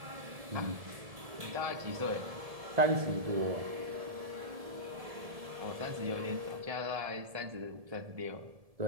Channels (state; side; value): late; left; 1.7 ms